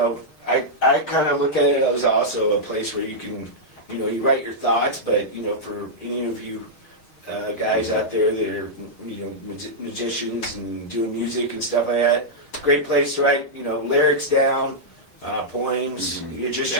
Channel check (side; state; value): right; late; 6.4 ms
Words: I kind of look at it as also a place where you can, you write your thoughts. But for any of you guys out there that are musicians and doing music and stuff like that, great place to write lyrics down. Poems, your